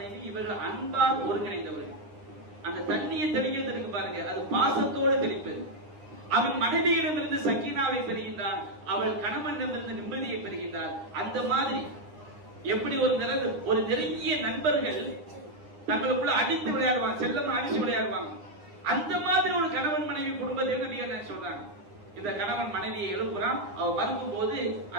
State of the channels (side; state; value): left; late; 9.9 ms